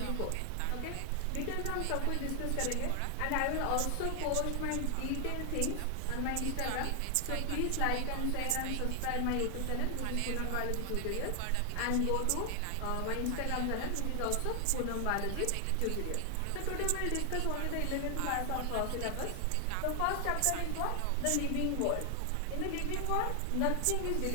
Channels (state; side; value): different; both; correlation 0.00